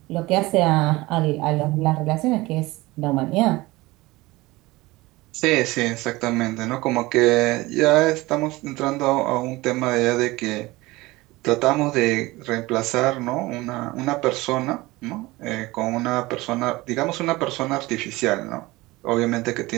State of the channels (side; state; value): left; quieter; 20.5 dB